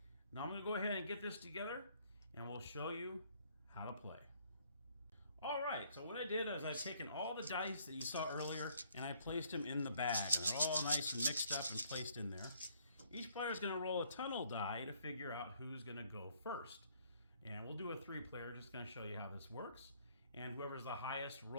now I'm going to go ahead and get this together, and we'll show you how to play. All right, so what I did is I've taken all the dice that you saw earlier and I placed them in the bag, and they're all nice and mixed up and placed in there. Each player is going to roll a tunnel die to figure out who's going to go first. And we'll do a 3-player, just going to show you how this works. And whoever's the highest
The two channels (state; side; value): inverted; both; correlation -0.65